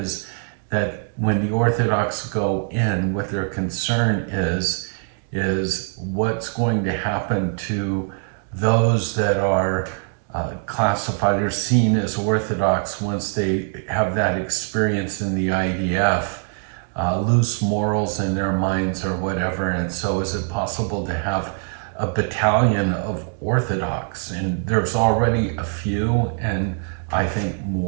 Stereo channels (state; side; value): silent; left; 62 dB below the other